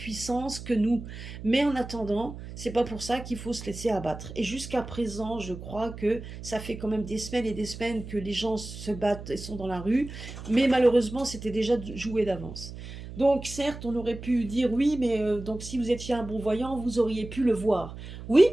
que nous. Mais en attendant, c'est pas pour ça qu'il faut se laisser abattre. Et jusqu'à présent, je crois que ça fait quand même des semaines et des semaines que les gens se battent et sont dans la rue, mais malheureusement, c'était déjà joué d'avance. Donc certes, on aurait pu dire: «Oui, mais donc si vous étiez un bon voyant, vous auriez pu le voir». Oui,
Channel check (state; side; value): noise; right; hum, 11 dB below the sound